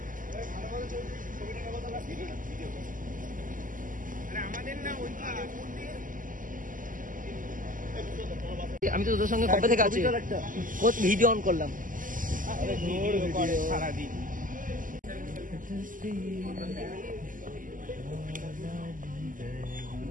আমি তো তোদের সঙ্গে কবে থেকে আছি, ভিডিও অন করলাম।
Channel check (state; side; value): late; left; 0.39 ms